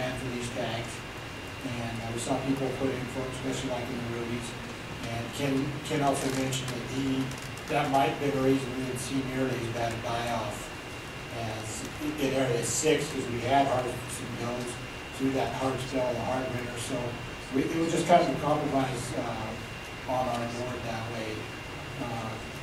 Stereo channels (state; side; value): identical; both; correlation 1.00